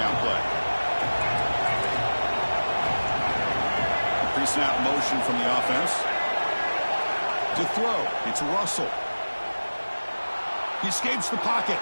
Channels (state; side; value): inverted; both; correlation -1.00